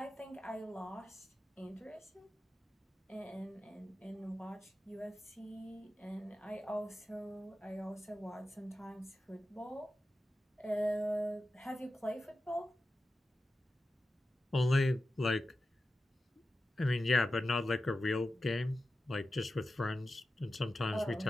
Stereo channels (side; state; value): both; normal; correlation 0.93